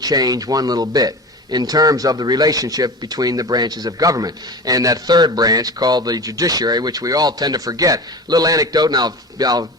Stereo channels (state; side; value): normal; both; correlation 0.31